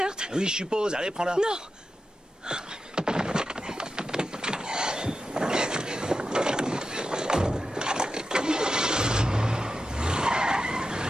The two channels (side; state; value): both; normal; correlation 0.90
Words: Oui, je suppose. Allez, prends-la. Non!